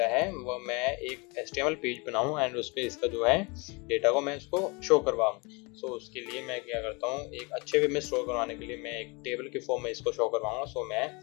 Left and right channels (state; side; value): quieter; right; 28.5 dB